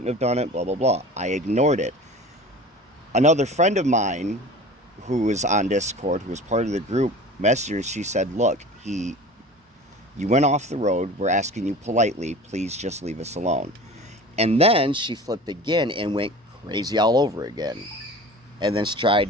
have done it, blah, blah, blah. I ignored it. Another friend of mine who was on Discord, who was part of the group, messaged her. She said, look, you went off the road. We're asking you politely, please just leave us alone. And then she flipped again and went crazy all over again. And then tried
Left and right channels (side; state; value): both; normal; correlation 0.39